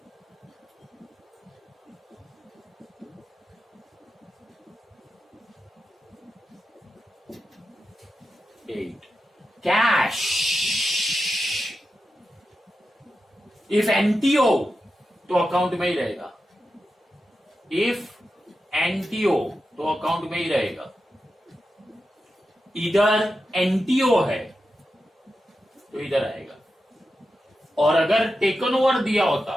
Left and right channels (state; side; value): normal; both; correlation 0.90